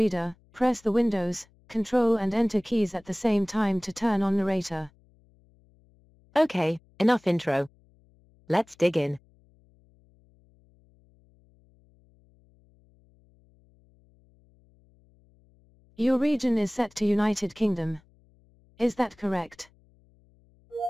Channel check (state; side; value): noise; left; hum, 29 dB below the sound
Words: press the Windows, Control and Enter keys at the same time to turn on narrator. Okay, enough intro. Let's dig in. Your region is set to United Kingdom. Is that correct?